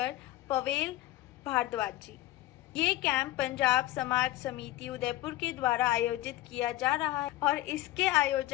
पवेल भारद्वाज जी। ये कैंप पंजाब समाज समिति उदयपुर के द्वारा आयोजित किया जा रहा है और इसके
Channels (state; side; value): quieter; right; 16.0 dB